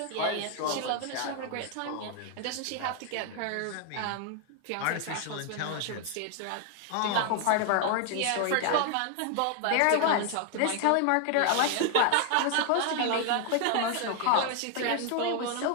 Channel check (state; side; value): different; both; correlation 0.00